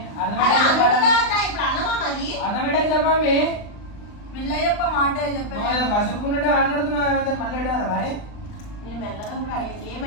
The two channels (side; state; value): right; late; 39 ms